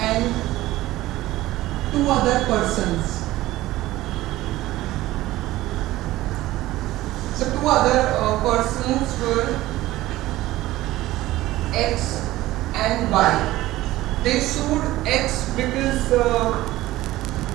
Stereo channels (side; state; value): left; quieter; 16.6 dB